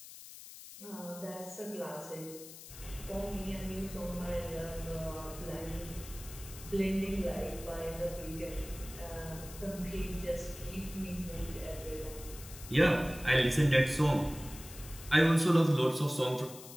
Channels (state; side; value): noise; left; hiss, 15 dB below the sound